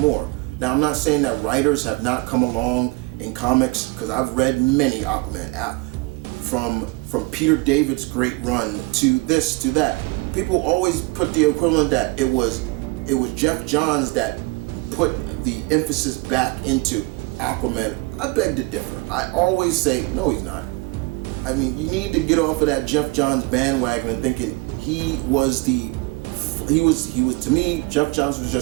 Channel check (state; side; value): quieter; left; 25.6 dB